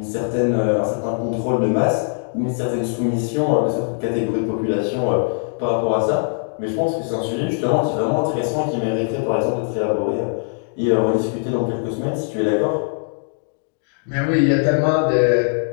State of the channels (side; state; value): right; silent; digital silence